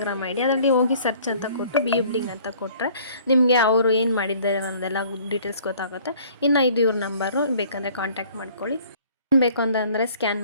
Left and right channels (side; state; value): both; inverted; correlation -0.55